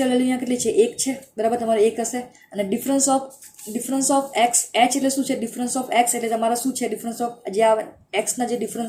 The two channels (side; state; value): both; identical; correlation 1.00